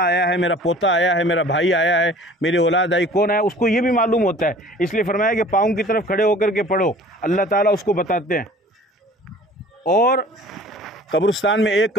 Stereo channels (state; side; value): normal; both; correlation 0.47